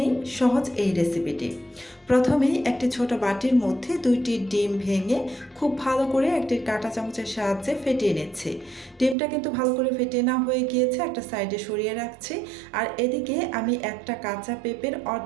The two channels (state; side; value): drops out; left; at 9.2 s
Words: সহজ এই রেসিপিটি। প্রথমেই একটি ছোট বাটির মধ্যে 2টি ডিম ভেঙে খুব ভালো করে একটি কাঁটা চামচের সাহায্যে ফেটিয়ে নিচ্ছি। ডিমটা কিন্তু ভালো করে ফেটিয়ে নেওয়া হয়ে গিয়েছে, একটা সাইডে সরিয়ে রাখছি। আর এদিকে আমি একটা কাঁচা পেঁপের